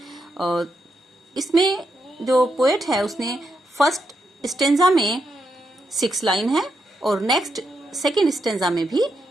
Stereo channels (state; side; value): normal; both; correlation 0.82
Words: और इसमें जो पोएट है उसने फर्स्ट स्टेंजा में 6 लाइन है और नेक्स्ट सेकंड स्टेंजा में भी